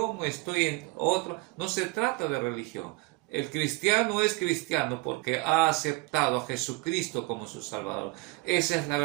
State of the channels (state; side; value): quieter; left; 23.2 dB